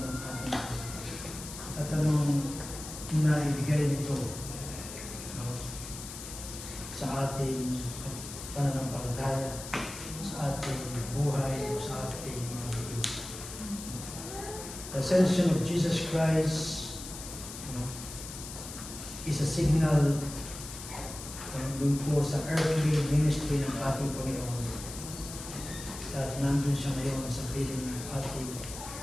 ating at anong naibigay nito sa ating pananampalataya, sa ating buhay, sa ating mga bigay. The ascension of Jesus Christ is a signal dun po sa earthly ministry ng ating Panginoon. At nandun siya ngayon sa piling ng ating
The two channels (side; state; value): left; noise; hiss, 10 dB below the sound